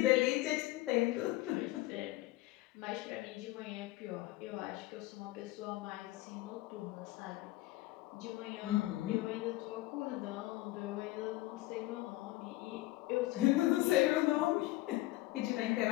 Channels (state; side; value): quieter; right; 18.2 dB